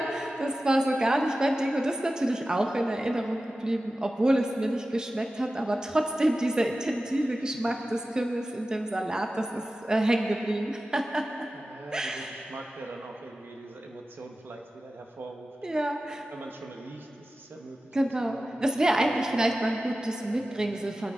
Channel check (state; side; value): normal; both; correlation 0.94